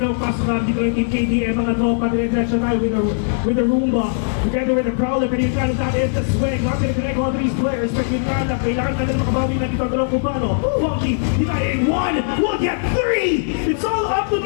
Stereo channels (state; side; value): silent; right; 66 dB below the other